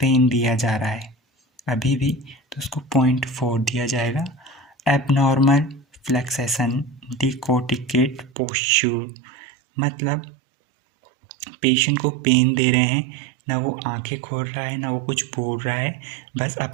दिया जा रहा है अभी भी, तो उसको 0.4 दिया जाएगा। एबनॉर्मल फ्लेक्सेशन डिकोटिकेट पोस्चर, मतलब पेशेंट को पेन दे रहे हैं, ना वो आंखें खोल रहा है ना वो कुछ बोल रहा है, बस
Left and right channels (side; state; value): left; drops out; at 8.3 s